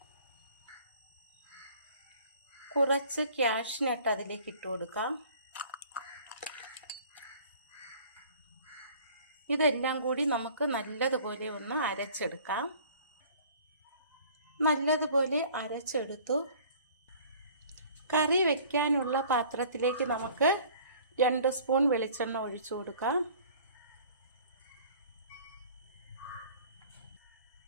കുറച്ച് കാഷ്നട്ട് അതിലേക്ക് ഇട്ട് കൊടുക്കാം. ഇതെല്ലാം കൂടി നമുക്ക് നല്ലതുപോലെ ഒന്ന് അരച്ചെടുക്കാം. നല്ലതുപോലെ അരച്ചെടുത്തു. കറി വയ്ക്കാനുള്ള പാത്രത്തിലേക്ക് നമുക്ക് 2 സ്പൂൺ വെളിച്ചെണ്ണ ഒഴിച്ചു കൊടുക്കാം.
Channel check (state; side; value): inverted; both; correlation -0.51